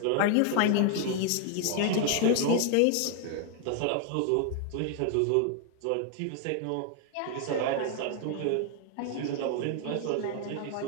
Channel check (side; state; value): both; different; correlation 0.00